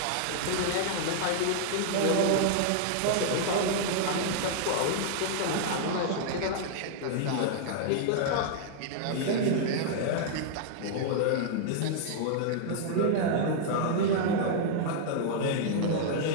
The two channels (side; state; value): both; different; correlation -0.01